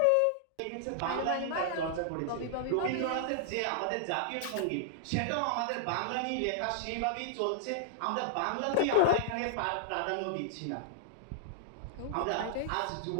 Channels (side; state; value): both; different; correlation -0.01